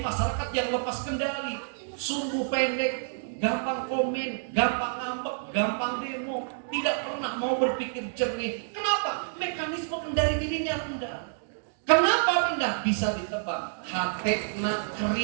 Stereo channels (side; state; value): left; silent; digital silence